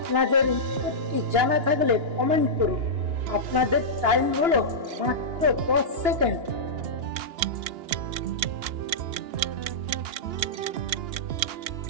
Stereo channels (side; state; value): left; late; 2.9 ms